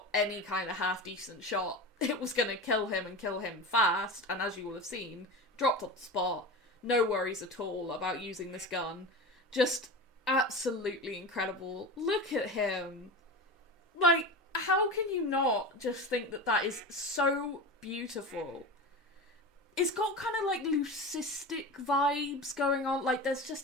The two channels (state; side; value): normal; both; correlation 0.27